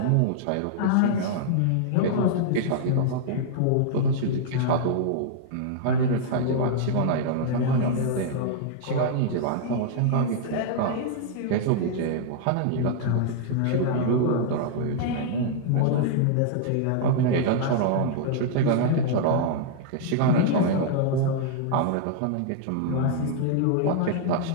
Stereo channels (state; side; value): different; both; correlation -0.01